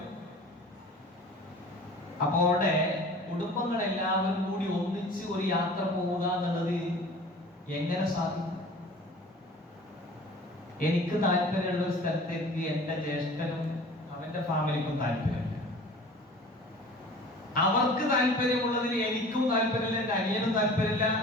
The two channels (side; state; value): both; normal; correlation 0.43